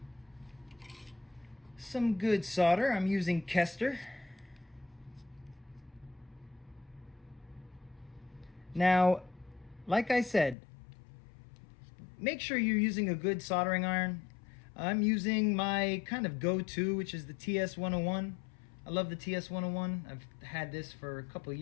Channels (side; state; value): right; drops out; at 10.6 s